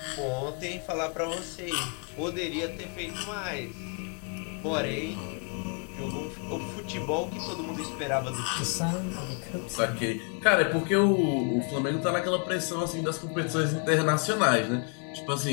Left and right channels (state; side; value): quieter; right; 39.3 dB